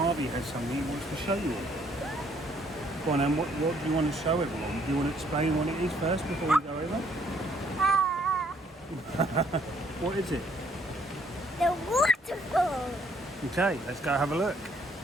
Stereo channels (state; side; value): normal; both; correlation 0.66